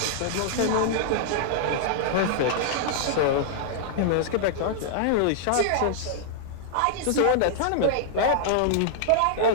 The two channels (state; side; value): different; both; correlation -0.01